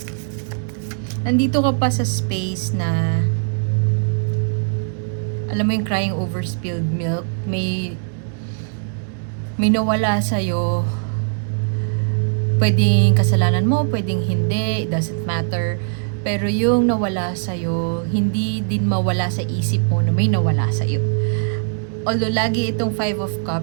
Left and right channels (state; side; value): silent; left; digital silence